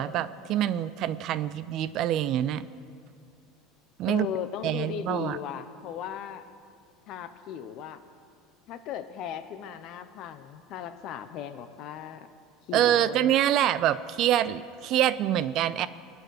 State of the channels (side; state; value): left; quieter; 8.2 dB